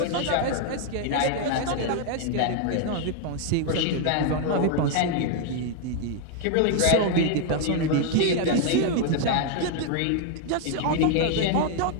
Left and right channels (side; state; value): both; different; correlation 0.00